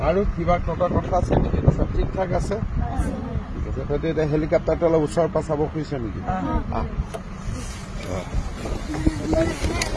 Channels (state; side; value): identical; both; correlation 1.00